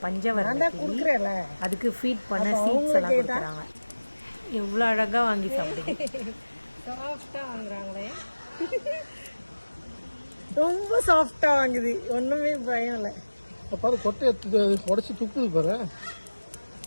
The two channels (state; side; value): inverted; both; correlation -1.00